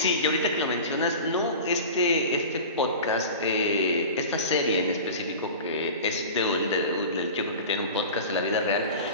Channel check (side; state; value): both; inverted; correlation -0.34